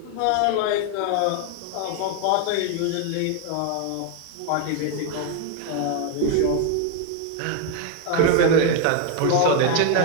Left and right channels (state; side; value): different; both; correlation 0.00